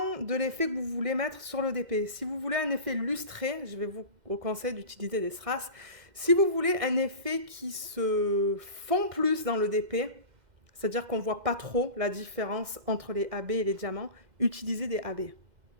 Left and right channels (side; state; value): left; late; 2.1 ms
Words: de l'effet que vous voulez mettre sur le DP. Si vous voulez un effet lustré, je vais vous conseiller d'utiliser des strass. Si vous voulez un effet qui se fond plus dans le DP, c'est-à-dire qu'on ne voit pas trop la différence entre les AB et les diamants, utilisez des AB.